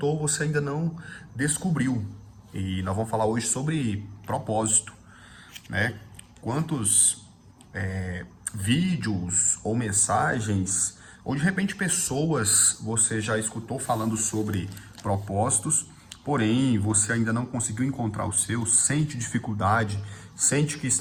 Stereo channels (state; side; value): identical; both; correlation 1.00